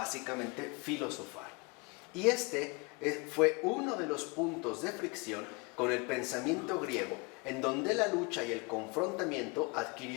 filosofar. Y este fue uno de los puntos de fricción con el pensamiento griego, en donde la lucha y el confrontamiento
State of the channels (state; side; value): quieter; right; 29.1 dB